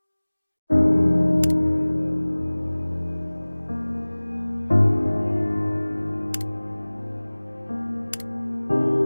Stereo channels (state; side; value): inverted; both; correlation -1.00